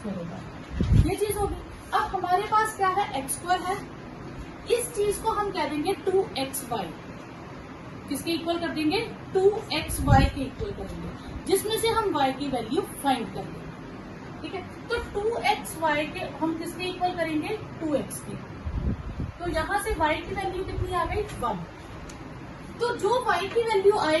होगा। ये चीज होगी। अब हमारे पास क्या है, x² है, इस चीज को हम कह देंगे 2xy, किसके इक्वल कर देंगे, 2xy के इक्वल करेंगे, जिसमें से हम y की वैल्यू फाइंड कर लेंगे। ठीक है, तो 2xy के हम किसके इक्वल करेंगे, 2x के। तो यहाँ से y की वैल्यू कितनी आ गई, 1। तो जो y की वैल्यू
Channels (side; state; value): both; identical; correlation 1.00